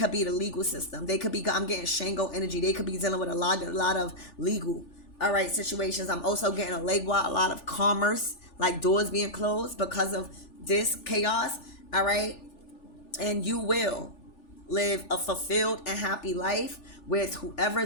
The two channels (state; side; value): late; right; 3.4 ms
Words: be the legal system. They could be, I'm getting Shango energy. They could be dealing with a lot of legal, all right, situations. I'm also getting a lot of commerce, like doors being closed because of this chaos, all right, and you will live a fulfilled and happy life with whoever